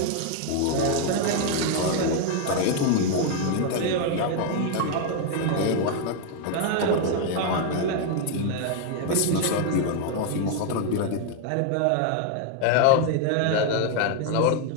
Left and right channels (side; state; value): both; different; correlation 0.00